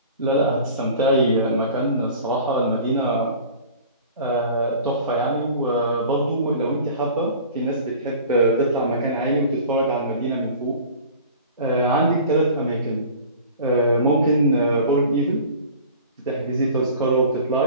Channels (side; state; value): both; inverted; correlation -0.42